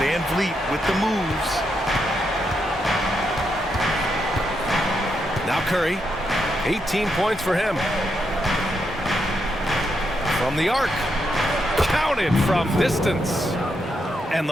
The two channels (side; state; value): both; normal; correlation 0.81